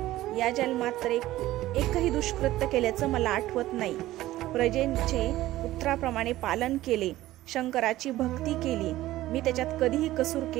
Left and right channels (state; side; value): quieter; left; 15.7 dB